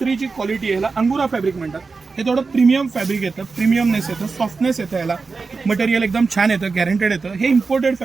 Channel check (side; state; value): left; quieter; 4.4 dB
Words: जी क्वालिटी आहे ह्याला अंगुरा फॅब्रिक म्हणतात. हे थोडं प्रीमियम फॅब्रिक येतं, प्रीमियमनेस येतं, सॉफ्टनेस येतं, याला मटेरियल एकदम छान येतं, गॅरंटेड येतं. हे इम्पोर्टेड